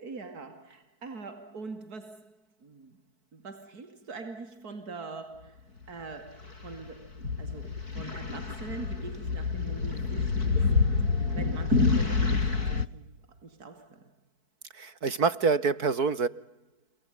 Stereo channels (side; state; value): left; late; 4.6 ms